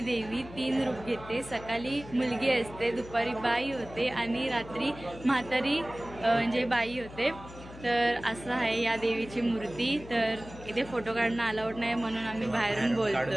देवी 3 रूप घेते. सकाळी मुलगी असते, दुपारी बाई होते आणि रात्री म्हातारी म्हणजे बाई होते. तर असं आहे या देवीची मूर्ती. तर इथे फोटो काढणं अलाउड नाही म्हणून आम्ही बाहेरून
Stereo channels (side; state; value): left; noise; hum, 16 dB below the sound